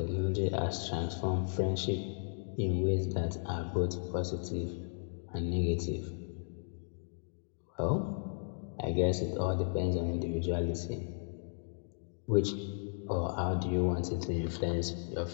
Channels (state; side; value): silent; right; digital silence